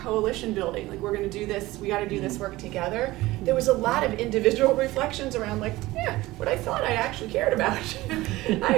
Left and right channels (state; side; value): quieter; left; 18.5 dB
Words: building, like we're gonna do this, we gotta do this work together. There was a lot of individual reflections around like, yeah, what I thought I actually cared about, I